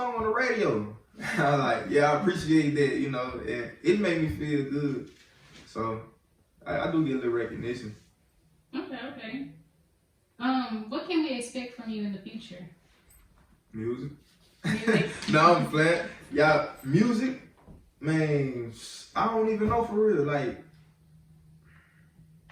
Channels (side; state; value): both; identical; correlation 1.00